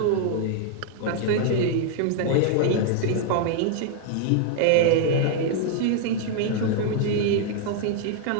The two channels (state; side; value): different; both; correlation 0.00